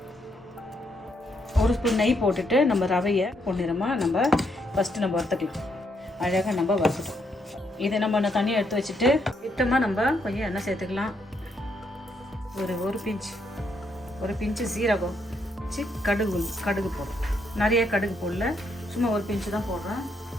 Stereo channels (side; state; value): both; normal; correlation 0.76